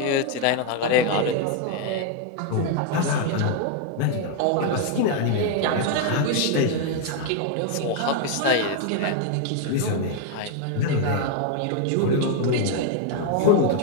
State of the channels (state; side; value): different; both; correlation 0.00